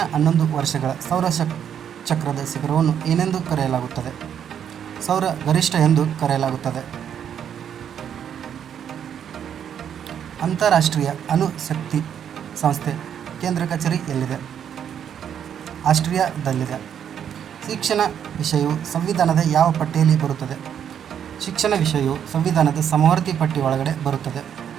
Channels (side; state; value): left; quieter; 8.8 dB